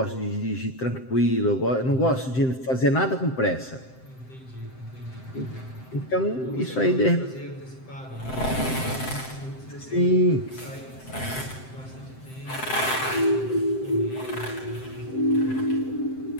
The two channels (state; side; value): late; right; 7.7 ms